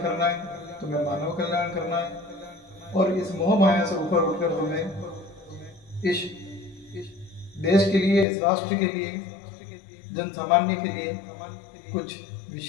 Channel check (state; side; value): drops out; right; at 8.2 s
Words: करना है, तुम्हें मानव कल्याण करना है, और इस मोह माया से ऊपर उठकर तुम्हें इस देश के लिए, इस राष्ट्र के लिए, जन सामान्य के लिए कुछ